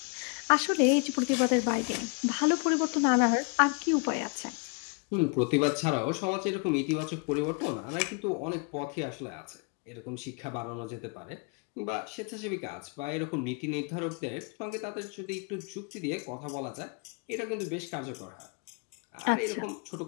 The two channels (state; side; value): quieter; right; 35.4 dB